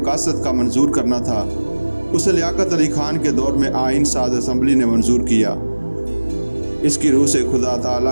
کا منظور کرنا تھا۔ اسے لیاقت علی خان کے دور میں آئین ساز اسمبلی نے منظور کیا۔ اس کی روح سے خدا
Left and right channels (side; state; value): both; inverted; correlation -1.00